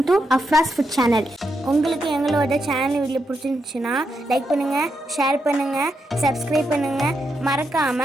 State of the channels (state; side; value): normal; both; correlation 0.83